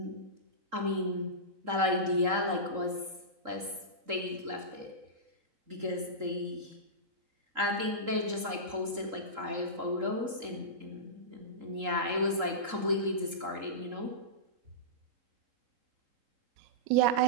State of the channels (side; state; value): left; late; 3.8 ms